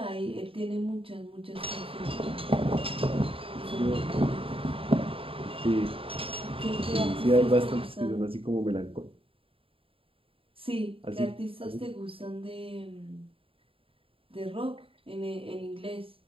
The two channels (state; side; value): late; left; 0.27 ms